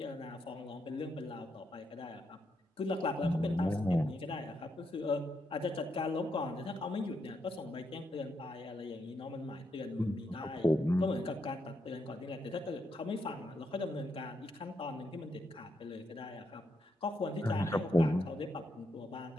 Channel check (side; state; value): both; normal; correlation 0.80